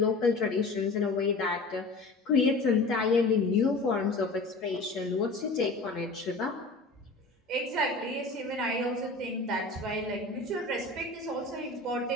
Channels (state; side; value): quieter; right; 3.2 dB